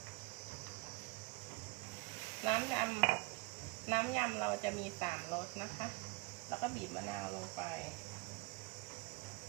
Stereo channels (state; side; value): quieter; left; 25.7 dB